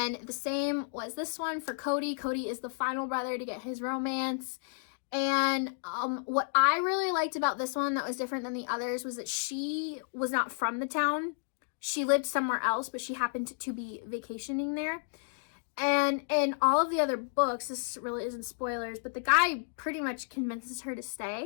the same was this one for Cody. Cody is the final brother to get his romance. And what I really liked about this one that was different than the others was that she was not from the town. She lived somewhere else, but she happened to be vacationing there. And in all of the other books, this really isn't spoilers, but the guy pretty much convinces her to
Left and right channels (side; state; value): right; silent; digital silence